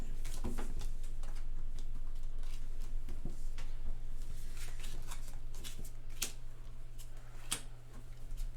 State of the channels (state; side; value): identical; both; correlation 1.00